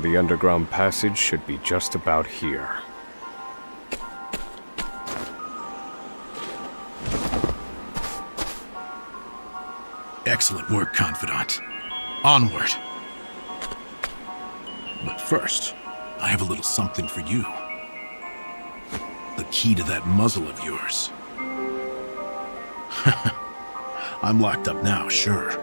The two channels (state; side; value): inverted; both; correlation -1.00